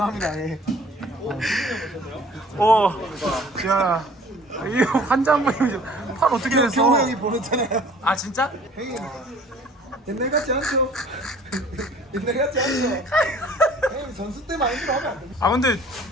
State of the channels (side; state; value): both; normal; correlation 0.51